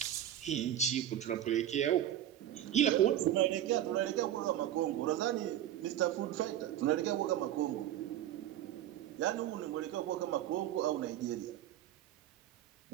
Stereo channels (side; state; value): left; quieter; 11.8 dB